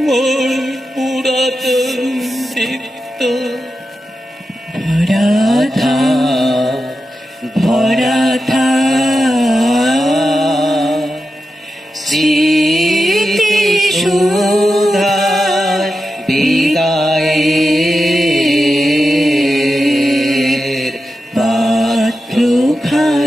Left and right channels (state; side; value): normal; both; correlation 0.90